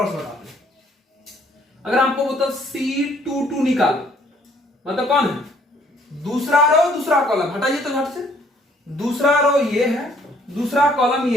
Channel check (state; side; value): normal; both; correlation 0.63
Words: बता दें। अगर आपको बोलता C22 निकालो, मतलब कौन है, दूसरा रो दूसरा कॉलम, हटाइए तो झट से, दूसरा रो ये है, दूसरा कॉलम